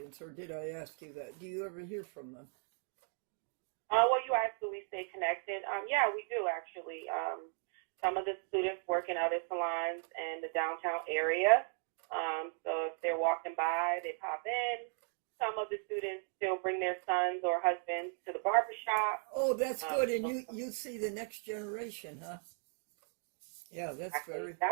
or did I ask you that? Do you ever hear from them? Well, you asked, do we stay connected? Yeah, we do actually. Some of the students work in other salons in the downtown area. So if they're walking by, they pop in. Some of the students still bring their sons or husbands to the barbershop. Oh, that's good. And you see the next generation, huh? Yeah, that's Actually, very...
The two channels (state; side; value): silent; left; 53 dB below the other